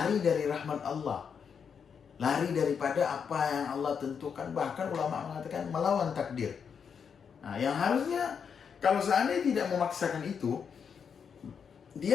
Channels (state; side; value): quieter; right; 6.8 dB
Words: dari rahmat Allah, lari daripada apa yang Allah tentukan. Bahkan ulama mengatakan melawan takdir. Nah, yang harusnya kalau seandainya tidak memaksakan itu,